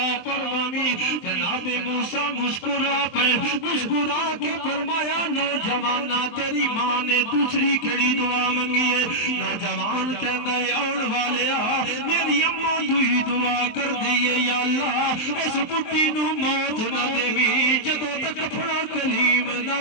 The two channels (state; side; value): late; right; 23 ms